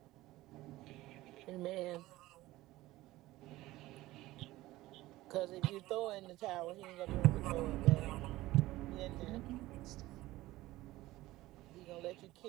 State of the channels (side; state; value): left; quieter; 17.4 dB